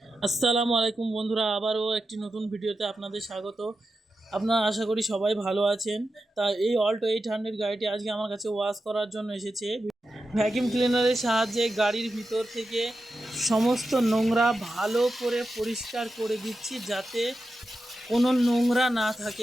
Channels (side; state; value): both; normal; correlation 0.90